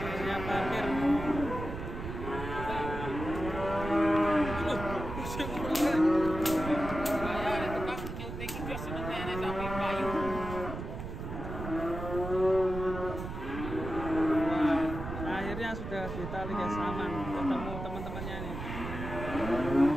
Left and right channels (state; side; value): noise; right; rumble, 7 dB below the sound